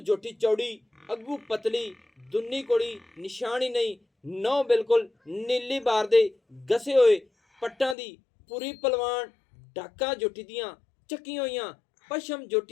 जोटी चौड़ी, अगू पतली, दुन्नी कोड़ी निशान ही नहीं। नौ बिल्कुल नीली बार दे गसे हुए पट्टां दी पूरी पलवान, डाका जोटी दियां चक्कियां होइयां, पशम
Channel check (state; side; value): drops out; right; at 8.0 s